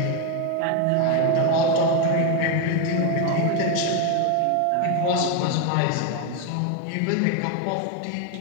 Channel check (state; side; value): different; both; correlation 0.02